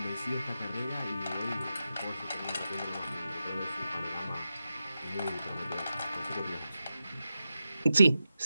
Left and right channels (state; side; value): inverted; both; correlation -0.90